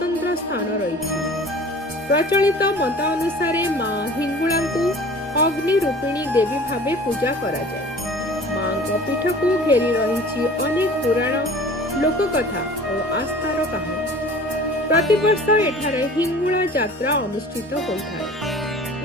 स्थान रही। प्रचलित मत अनुसार माँ हिंगुला को अग्नि रूपिणी देवी भावे पूजा करा जाए। माँ पीठ को घेरी रही अनेक पुराण लोककथा और आस्थार कहानी। प्रतिवर्ष एठारे हिंगुला यात्रा अनुष्ठित होता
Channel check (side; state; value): both; normal; correlation 0.44